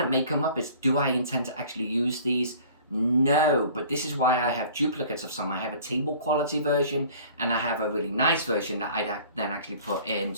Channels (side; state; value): both; inverted; correlation -0.49